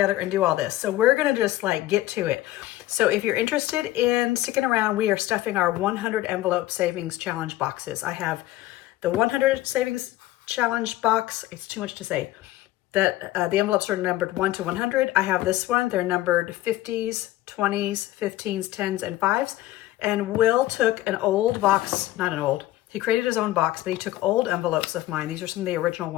and do all this. So we're going to just like get to it. So if you're interested in sticking around, we are stuffing our 100 envelope savings challenge boxes. I have the 100 savings challenge box. It's too much to say. That the envelopes are numbered 1 to 100. I have this one. They're numbered 50s, 20s, 15s, 10s, and 5s. And Will took an old box, not an old, he created his own box, but he took old envelopes of mine. These are some of the original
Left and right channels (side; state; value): right; quieter; 15.7 dB